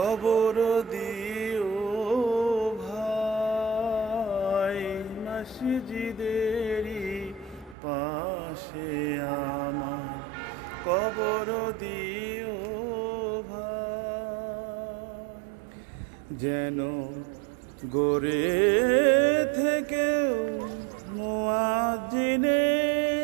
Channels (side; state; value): left; drops out; at 7.8 s